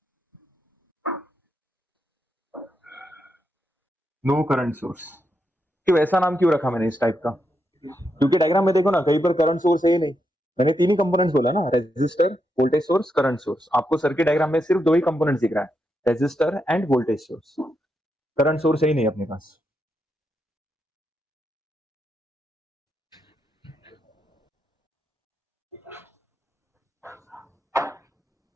No current source, क्यों ऐसा नाम क्यों रखा मैंने इस टाइप का? क्योंकि डायग्राम में देखो ना, कहीं पर करंट सोर्स है ही नहीं। मैंने तीन ही कंपोनेंट्स बोला ना, resistor, voltage source, current source. आपको सर्किट डायग्राम में सिर्फ दो ही कंपोनेंट्स दिख रहा है, resistor and voltage source. Current source है ही नहीं अपने पास।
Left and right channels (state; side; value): normal; both; correlation 0.83